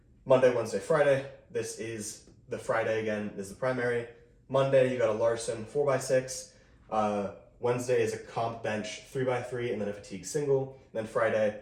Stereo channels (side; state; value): both; identical; correlation 1.00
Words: Monday, Wednesday, Friday. This is the Friday again, this is the primary. Monday, you got a Larson 4x6. Wednesday is a comp bench 3x3 and then a fatigue single. And then Friday,